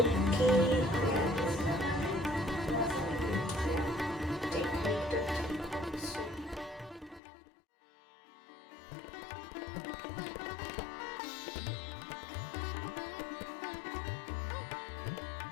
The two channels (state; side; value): drops out; right; at 7.2 s